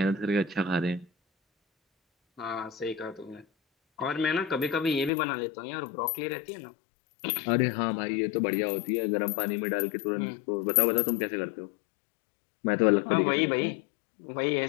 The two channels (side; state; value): right; drops out; at 5.1 s